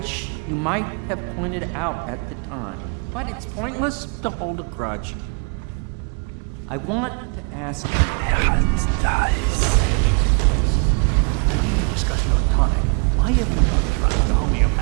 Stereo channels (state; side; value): quieter; left; 36.8 dB